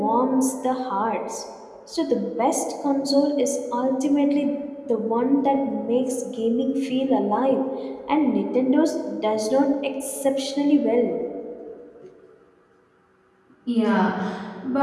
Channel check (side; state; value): both; identical; correlation 1.00